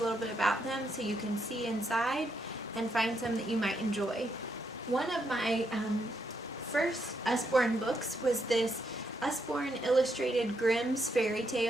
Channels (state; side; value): normal; both; correlation 0.79